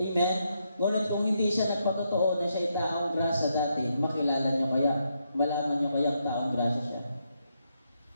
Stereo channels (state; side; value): inverted; both; correlation -0.80